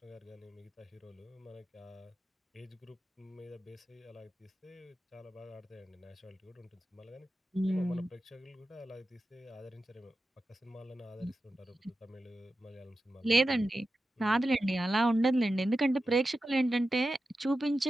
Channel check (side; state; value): both; normal; correlation 0.92